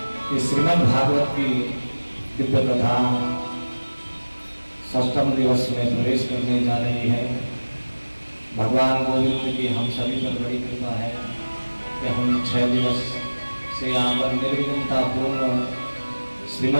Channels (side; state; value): both; inverted; correlation -1.00